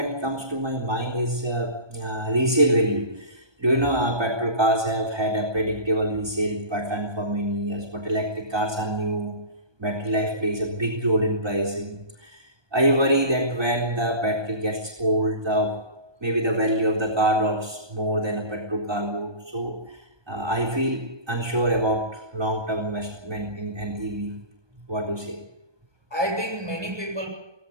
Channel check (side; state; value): left; late; 1.2 ms